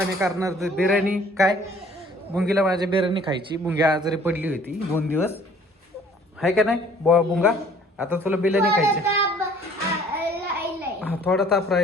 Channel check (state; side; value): normal; both; correlation 0.55